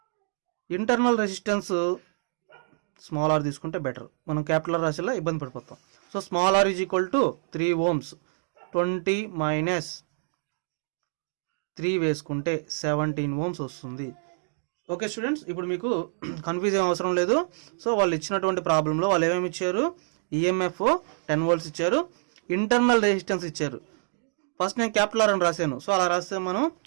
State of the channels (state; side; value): silent; left; digital silence